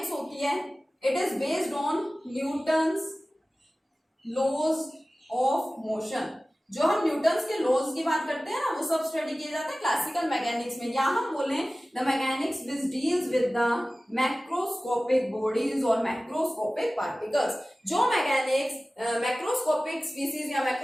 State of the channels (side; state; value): both; normal; correlation 0.97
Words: होती है, it is based on Newton's laws of motion. जो हम न्यूटन्स के लॉज की बात करते हैं ना, वो सब स्टडी किए जाते हैं क्लासिकल मैकेनिक्स में, या हम बोले the mechanics which deals with the macroscopic bodies और मैक्रोस्कोपिक पार्टिकल्स। जो मैकेनिक्स मैक्रोस्कोपिक स्पीसीज या